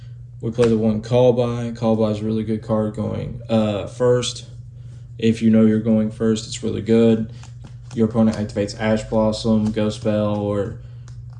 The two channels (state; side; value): identical; both; correlation 1.00